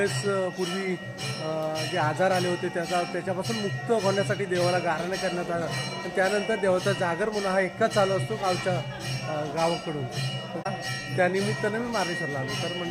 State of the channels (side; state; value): both; identical; correlation 1.00